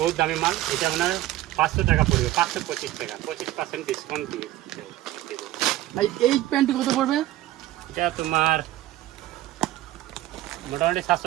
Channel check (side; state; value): left; quieter; 15.1 dB